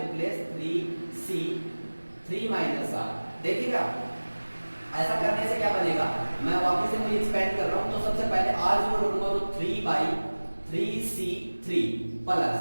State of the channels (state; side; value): inverted; both; correlation -1.00